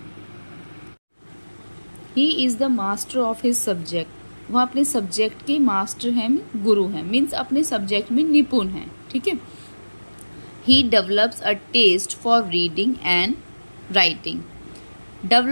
is the master of his subject, वह अपने सब्जेक्ट के मास्टर हैं, गुरु हैं, मीन्स अपने सब्जेक्ट में निपुण हैं। ठीक है। He develops a test for reading and writing.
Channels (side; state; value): both; inverted; correlation -1.00